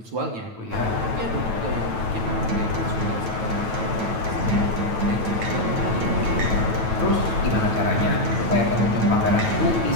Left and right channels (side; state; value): left; late; 9.1 ms